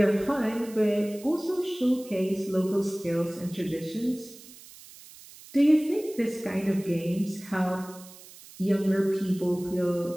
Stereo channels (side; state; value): right; noise; hiss, 19 dB below the sound